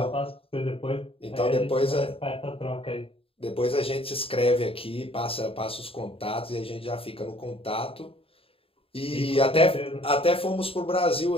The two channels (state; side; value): late; right; 0.27 ms